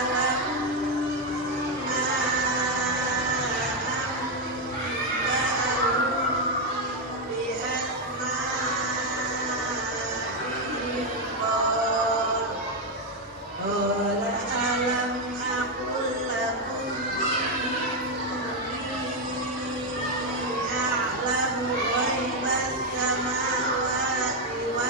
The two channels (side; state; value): both; normal; correlation 0.04